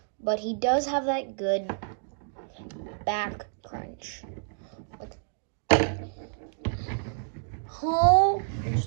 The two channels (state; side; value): silent; left; digital silence